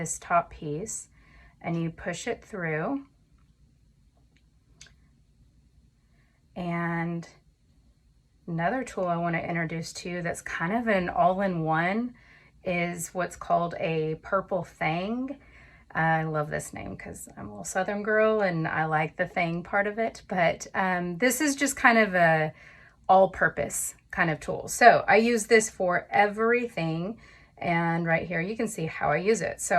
top piece and you push it through. And another tool I want to introduce to you that's kind of an all-in-one is what's called a purple thang. I love this name because I'm a little Southern girl and I like the thang part of it, but this is just kind of a all-purpose kind of tool. So I use this for everything, and right here you can see how I use it. So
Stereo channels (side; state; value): both; identical; correlation 1.00